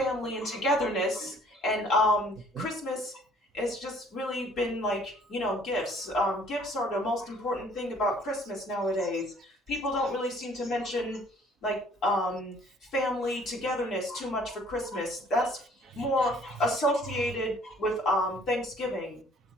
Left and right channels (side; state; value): both; normal; correlation 0.57